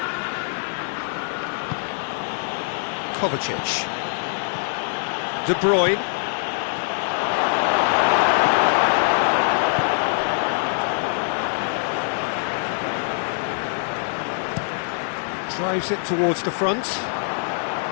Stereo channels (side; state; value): right; silent; digital silence